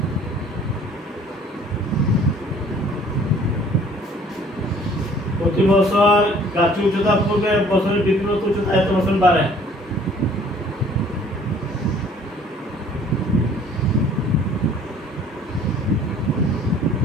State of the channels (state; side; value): normal; both; correlation 0.54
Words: প্রতি বছর গাছের উচ্চতা পূর্বে বছরের বৃদ্ধিপ্রাপ্ত উচ্চতা এত বছর বাড়ে।